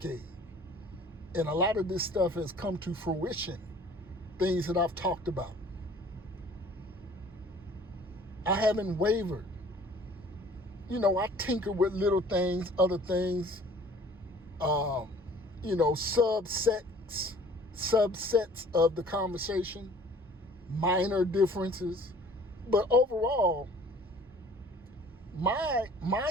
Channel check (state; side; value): normal; both; correlation 0.51